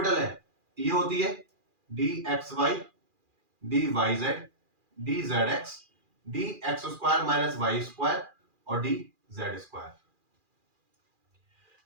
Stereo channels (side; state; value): left; late; 2.4 ms